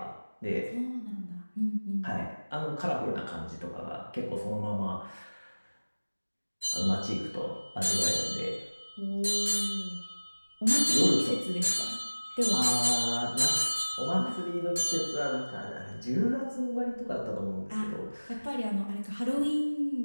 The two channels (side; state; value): both; inverted; correlation -1.00